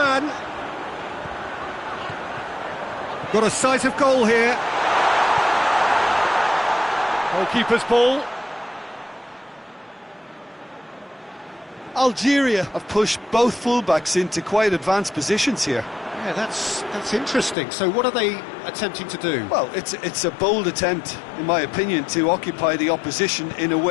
Got a sight of goal here. Goalkeeper's ball. Algeria have pushed both fullbacks into quite advanced positions here. Yeah, that's interesting. So what are they attempting to do? Well, it's a bold attempt, in my opinion, to occupy the opposition in a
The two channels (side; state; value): right; drops out; at 17.6 s